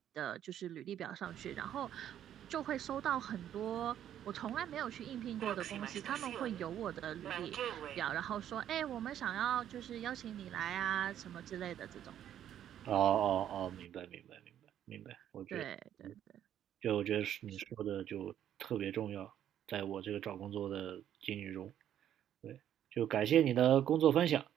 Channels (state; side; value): quieter; left; 10.6 dB